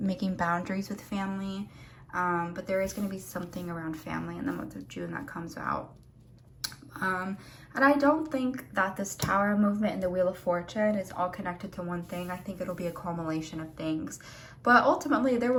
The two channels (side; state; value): both; identical; correlation 1.00